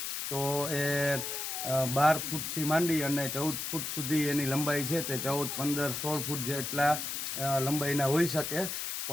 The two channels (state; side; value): noise; left; hiss, 4 dB below the sound